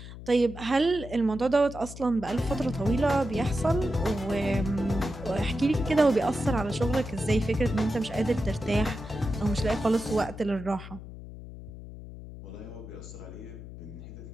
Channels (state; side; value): noise; left; hum, 13 dB below the sound